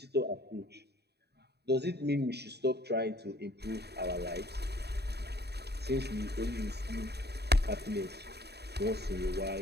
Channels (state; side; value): late; left; 0.48 ms